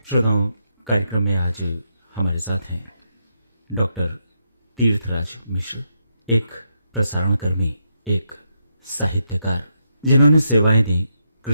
श्रोताओं, कार्यक्रम में आज हमारे साथ हैं डॉक्टर तीर्थराज मिश्र, एक प्रसारण कर्मी, एक साहित्यकार, जिन्होंने सेवाएं दी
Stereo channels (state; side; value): inverted; both; correlation -0.81